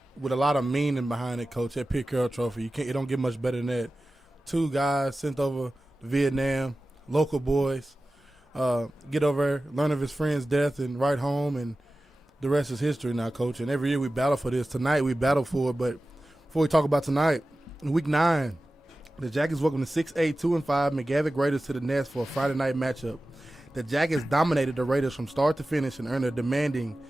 with a lot of meaning behind it, Coach. That Pitt Carroll Trophy, it don't get much better than that. Two guys sent over to Vietnam, local boys, get over there, learn of his friend's death, and right home, and the rest is history now, Coach. And every year we battle for this. Tonight we battle for it, but before we talk about tonight, in Week 9, the Jackets welcome the 6'8", 2-5 McGavick Raiders to the Nest for a Friday night matchup. The Jackets dominated the Raiders from start to finish and earned a demanding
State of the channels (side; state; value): both; normal; correlation 0.95